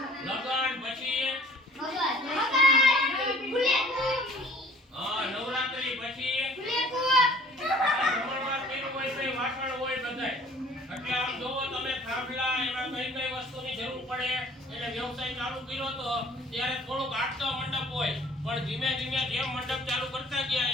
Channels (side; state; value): both; normal; correlation 0.53